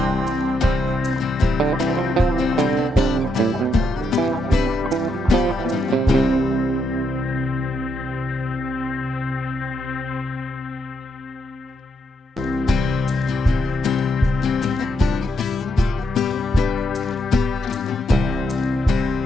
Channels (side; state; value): both; normal; correlation 0.80